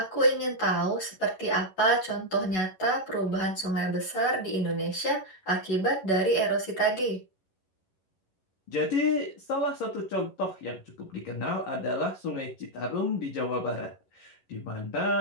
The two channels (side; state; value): right; late; 11 ms